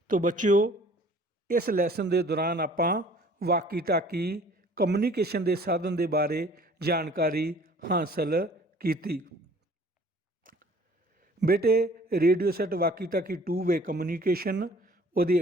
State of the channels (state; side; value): normal; both; correlation 0.52